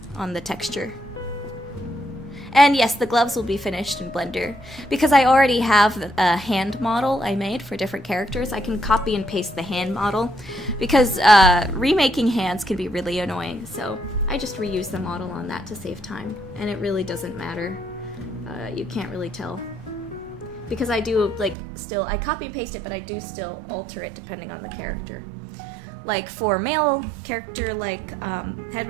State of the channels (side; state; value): left; drops out; at 21.6 s